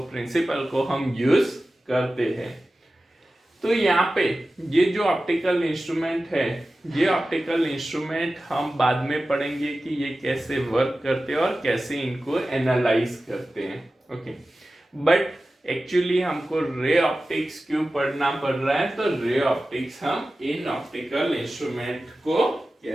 प्रिंसिपल को हम यूज करते हैं। तो यहाँ पे ये जो ऑप्टिकल इंस्ट्रूमेंट है, ये ऑप्टिकल इंस्ट्रूमेंट हम बाद में पढ़ेंगे कि ये कैसे वर्क करते हैं और कैसे इनको एनालाइज करते हैं। ओके, बट एक्चुअली हमको रे ऑप्टिक्स क्यों पढ़ना पड़ रहा है, तो रे ऑप्टिक्स हम इन ऑप्टिकल इंस्ट्रूमेंट को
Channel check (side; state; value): both; normal; correlation 0.95